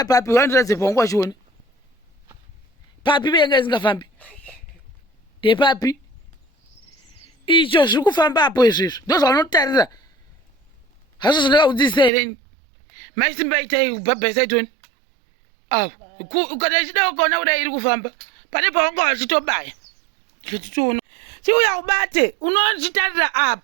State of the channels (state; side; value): drops out; left; at 12.1 s